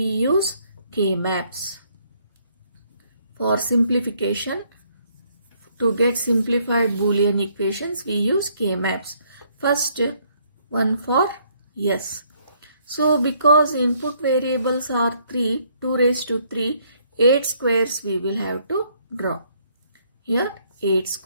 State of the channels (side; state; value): both; inverted; correlation -0.68